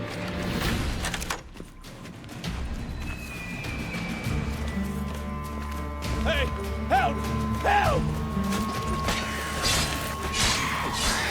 Hey! Help! Help!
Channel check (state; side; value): identical; both; correlation 1.00